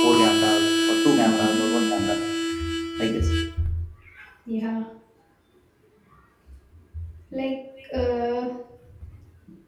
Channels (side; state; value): both; identical; correlation 1.00